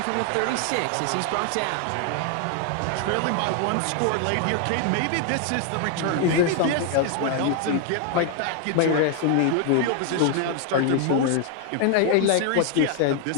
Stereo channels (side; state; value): both; different; correlation 0.00